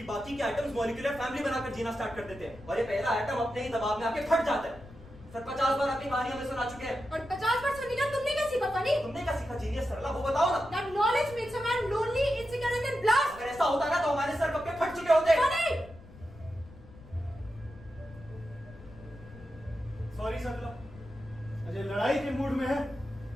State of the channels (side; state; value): left; noise; rumble, 19 dB below the sound